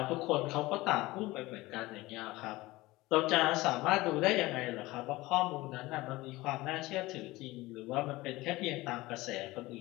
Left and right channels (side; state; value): right; quieter; 19.7 dB